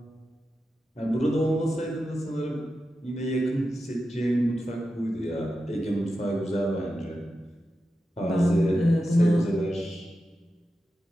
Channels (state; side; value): normal; both; correlation 0.90